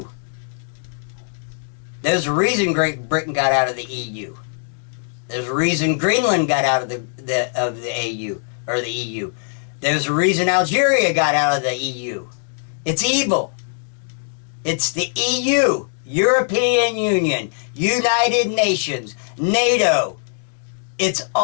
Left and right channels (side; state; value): right; silent; digital silence